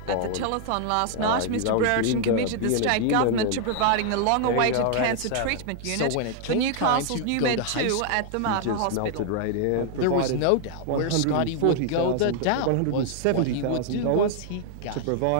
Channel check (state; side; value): different; both; correlation 0.00